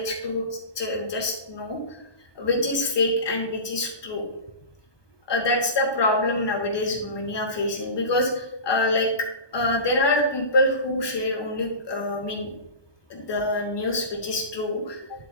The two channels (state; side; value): late; right; 1.2 ms